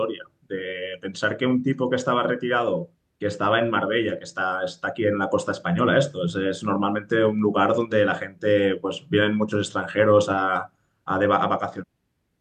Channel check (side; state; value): both; identical; correlation 1.00